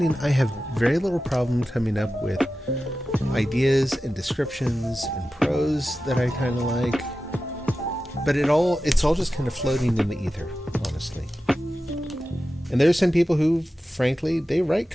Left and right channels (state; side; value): normal; both; correlation 0.93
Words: I have very little problem coming up with ideas and descriptions and prose that I kind of like, but it's all just kind of floating in the ether, honestly. And there's some people who, frankly, they write